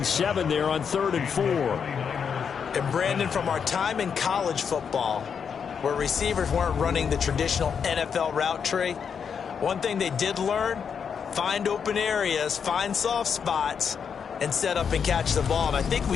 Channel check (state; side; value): quieter; right; 6.8 dB